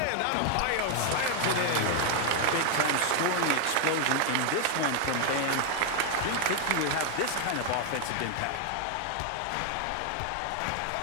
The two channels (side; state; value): both; different; correlation 0.00